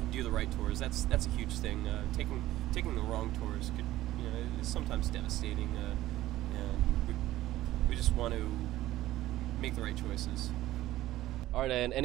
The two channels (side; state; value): left; quieter; 15.3 dB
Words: do the right tours. That's a huge thing. Taking the wrong tours could is sometimes devastating. And we just want to make the right choices. All right, and